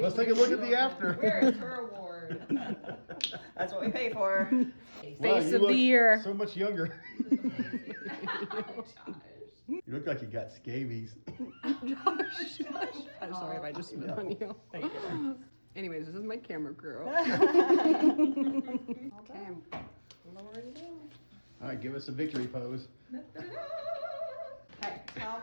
Let's take a look at the after. Where is her award? That's what we pay for. Wow, you of the look year. So much younger. Josh. You look like you got scabies. I'm sorry if I just spit on you. Thank you. Anyways, this is my camera crew. Okay. All right, give us a victory pose. Okay, tell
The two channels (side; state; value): both; inverted; correlation -1.00